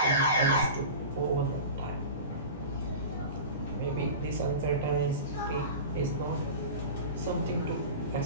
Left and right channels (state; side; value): inverted; both; correlation -0.32